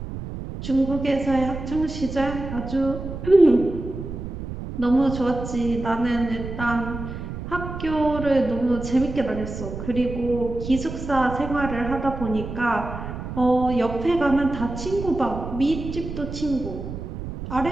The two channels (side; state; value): right; noise; rumble, 8 dB below the sound